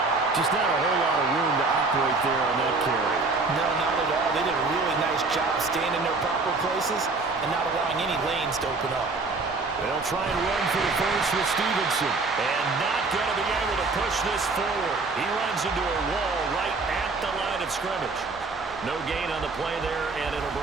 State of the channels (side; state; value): left; quieter; 3.8 dB